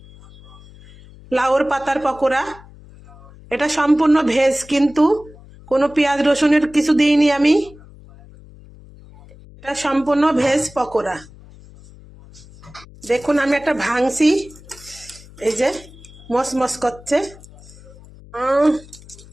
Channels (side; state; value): left; noise; hum, 21 dB below the sound